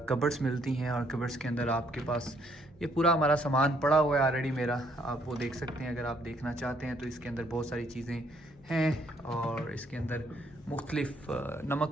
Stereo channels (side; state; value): both; normal; correlation 0.68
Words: मिलती हैं और कबर्ड्स के अंदर आपके पास ये पूरा हमारा सामान पड़ा हुआ है ऑलरेडी मेरा, आप वो देख सकते हैं अगर आप देखना चाहते हैं। तो इसके अंदर बहुत सारी चीज़ें हैं और इसके अंदर मुख्तलिफ़